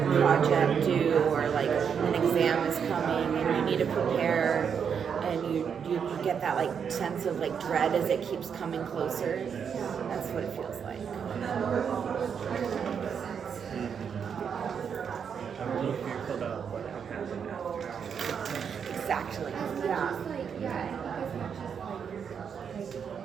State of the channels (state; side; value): quieter; left; 7.1 dB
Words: due or like an exam is coming and you need to prepare and you get that like sense of like dread as it keeps coming closer. That's what it feels like. I'm really fearful about what will happen after. Exactly. Yeah.